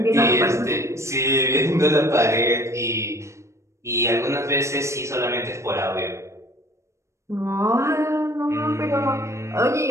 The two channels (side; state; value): left; late; 0.14 ms